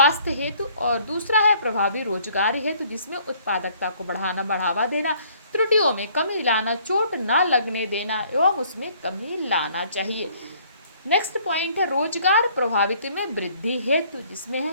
हेतु, और दूसरा है प्रभावी रोजगार हेतु, जिसमें उत्पादकता को बढ़ावा देना, त्रुटियों में कमी लाना, चोट न लगने देना एवं उसमें कमी लाना चाहिए। नेक्स्ट पॉइंट है रोजगार प्रभावित में वृद्धि हेतु, जिसमें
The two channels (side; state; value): both; inverted; correlation -0.60